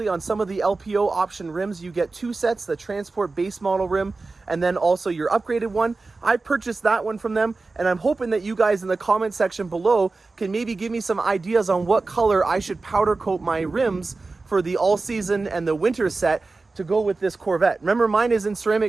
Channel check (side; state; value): left; quieter; 3.7 dB